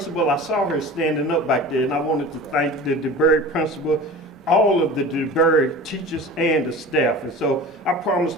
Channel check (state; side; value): normal; both; correlation 0.37